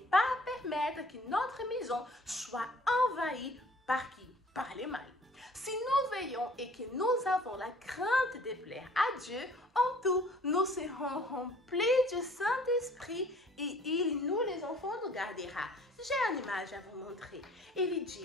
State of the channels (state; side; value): normal; both; correlation 0.53